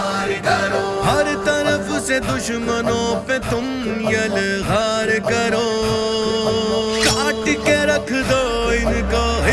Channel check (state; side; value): identical; both; correlation 1.00